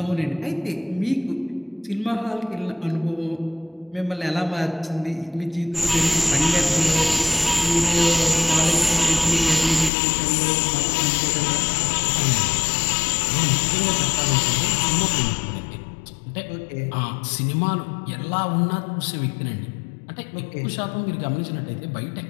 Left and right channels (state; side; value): drops out; right; at 9.9 s